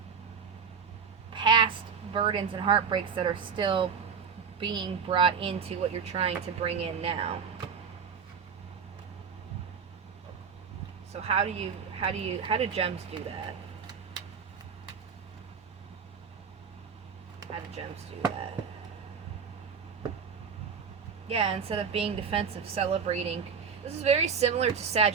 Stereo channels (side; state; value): left; quieter; 6.5 dB